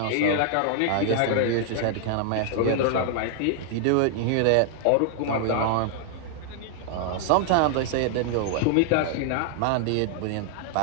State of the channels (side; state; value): both; different; correlation 0.00